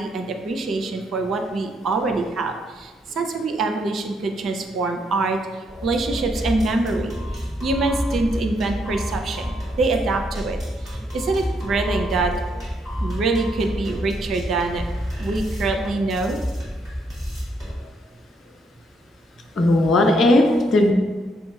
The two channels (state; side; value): normal; both; correlation 0.74